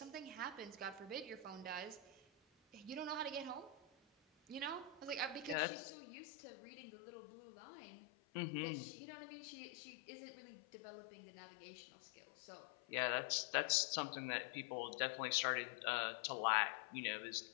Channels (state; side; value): drops out; right; at 5.6 s